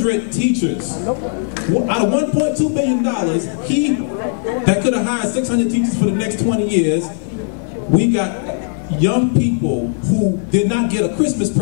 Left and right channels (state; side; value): silent; right; 62 dB below the other